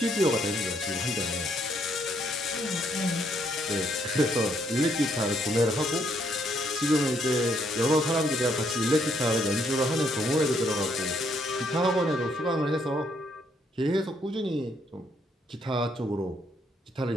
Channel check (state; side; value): normal; both; correlation 0.71